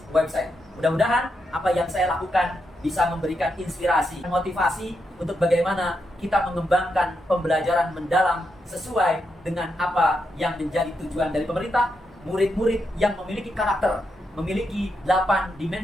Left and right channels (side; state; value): both; normal; correlation 0.83